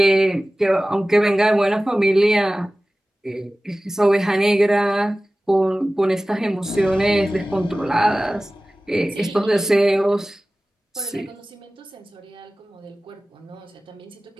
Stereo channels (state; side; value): normal; both; correlation 0.97